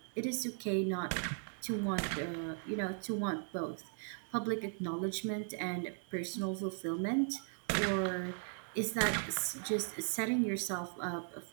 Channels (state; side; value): silent; left; 53 dB below the other